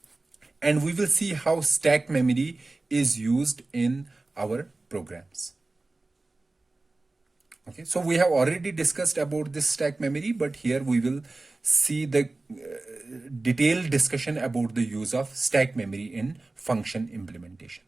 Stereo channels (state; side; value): quieter; left; 3.2 dB